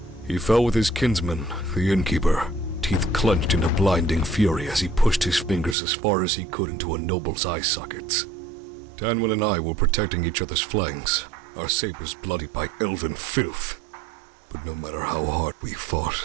He fell with his kinsman, the innkeeper, teeth clenched in a blinding fury as he pushed his fingers as far as he could into a noble's eye sockets. Tanwin and I were protecting each other's flanks, our sabers bloodied by elven filth. But no matter how hard we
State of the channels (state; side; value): drops out; left; at 5.8 s